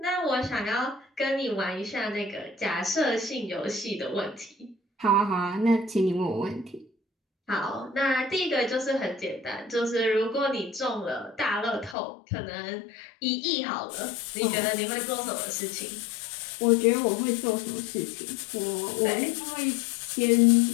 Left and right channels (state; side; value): drops out; right; at 12.0 s